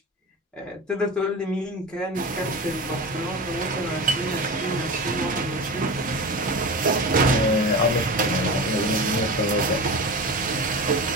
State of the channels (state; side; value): normal; both; correlation 0.28